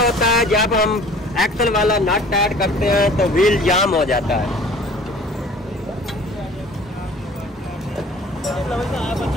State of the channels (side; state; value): both; normal; correlation 0.48